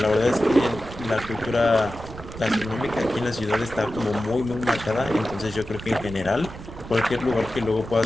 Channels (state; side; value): noise; right; rumble, 13 dB below the sound